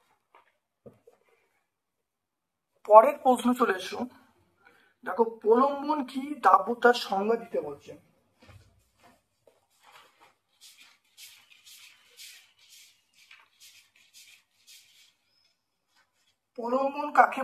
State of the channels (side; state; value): both; identical; correlation 1.00